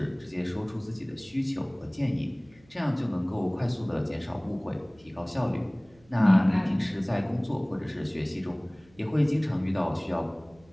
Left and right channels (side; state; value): right; noise; hum, 29 dB below the sound